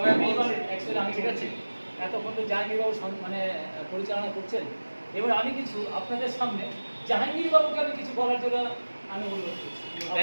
বলছে অ্যাকচুয়ালি আমি ঠিক আছে, এতক্ষণ তো জাহাঙ্গীরবাবু মানে পরিচালনা করছেন, এবার আমি কিছু আপনাদের সামনে জাহাঙ্গীরবাবুকে আমি কিছু বলার জন্য আমি অনুরোধ করছি।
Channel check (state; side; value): inverted; both; correlation -1.00